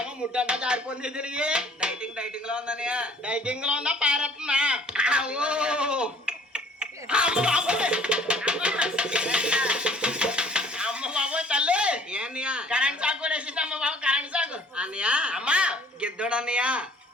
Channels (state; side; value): normal; both; correlation 0.55